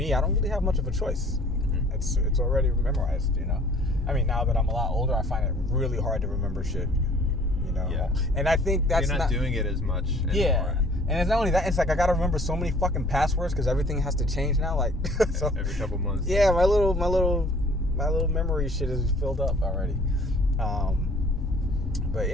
I don't really have much of a choice. It's already memorized, I mean, now that I'm a lot older, I find it really hard to remember shit, Yeah. And I think that's You're not doing it as much anymore. Yeah. And it's not only that, it's like I gotta remember so many fucking passwords because everything has to change now. Like, so every couple months. Yeah, my little memory shit is filled up already. But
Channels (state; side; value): noise; left; rumble, 7 dB below the sound